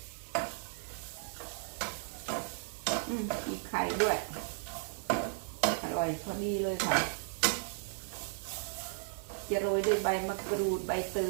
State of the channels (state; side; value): silent; left; digital silence